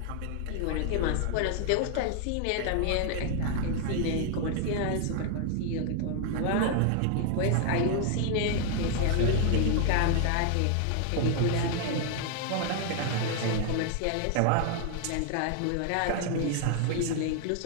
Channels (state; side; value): different; both; correlation 0.00